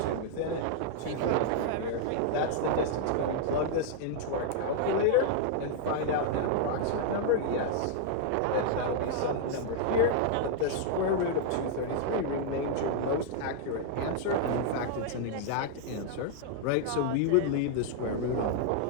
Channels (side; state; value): both; different; correlation -0.01